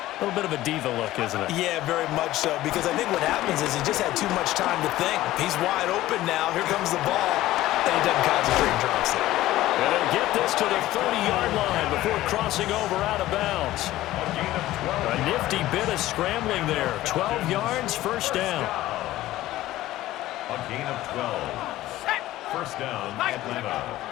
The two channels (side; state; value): right; quieter; 15.6 dB